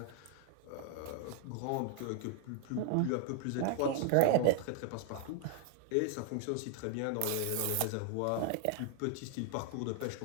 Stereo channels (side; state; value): both; different; correlation 0.00